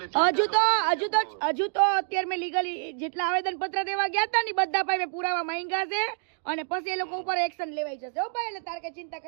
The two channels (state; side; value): silent; left; digital silence